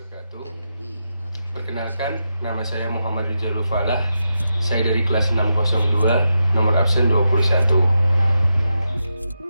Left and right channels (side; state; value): both; inverted; correlation -0.87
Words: Perkenalkan, nama saya Muhammad Rizalul Falah. Saya dari kelas 602, nomor absen 21.